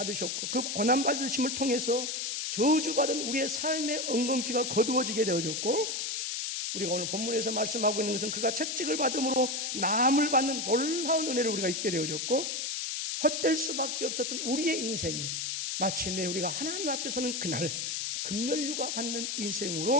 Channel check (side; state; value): left; noise; hiss, 2 dB below the sound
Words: 그 고난 받으심을 통해서 저주받은 우리의 삶의 엉겅퀴가 거두어지게 되어졌고 우리가 오늘 본문에서 말씀하고 있는 것은 그가 채찍을 받음으로 나음을 받는 놀라운 은혜를 우리가 잊게 되어졌고 헛될 수밖에 없었던 우리의 인생이 마침내 우리가 하나님 앞에 서는 그날 금멸류가 받는